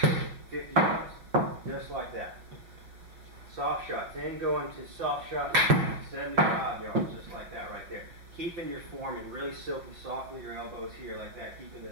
50 yards, just like that. Soft shots, then going to soft shots, 75 yards, just like that right there. Keeping your form and really silky, soft with your elbows here like that, keeping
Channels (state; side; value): late; left; 5.8 ms